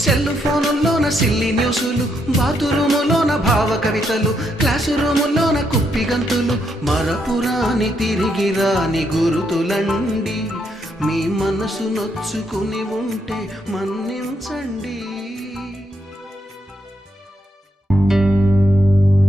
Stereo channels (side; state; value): both; normal; correlation 0.78